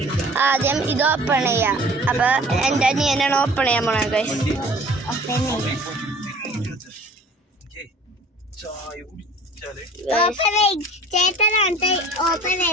ആദ്യം ഇത് ഓപ്പൺ ചെയ്യാം. അപ്പൊ എന്റെ അനിയനാണ് ഓപ്പൺ ചെയ്യാൻ പോണത് ഗൈസ്.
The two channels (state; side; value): normal; both; correlation 0.47